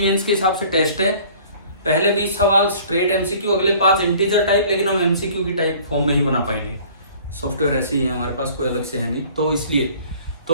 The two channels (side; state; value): both; inverted; correlation -0.51